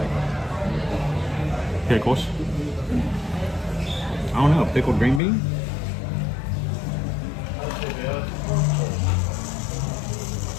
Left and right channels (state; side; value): drops out; right; at 5.2 s